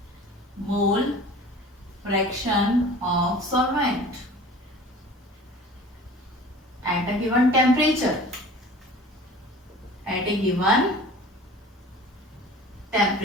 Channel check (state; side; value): normal; both; correlation 0.43